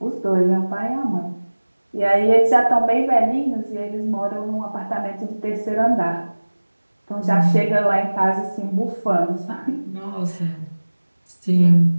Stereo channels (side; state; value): both; inverted; correlation -1.00